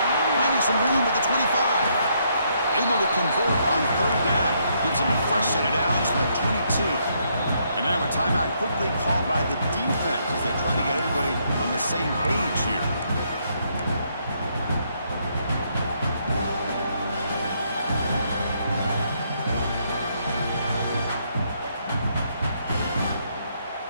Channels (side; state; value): both; inverted; correlation -0.73